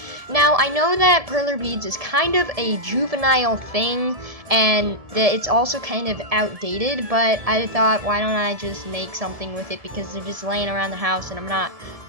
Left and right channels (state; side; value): late; left; 1.7 ms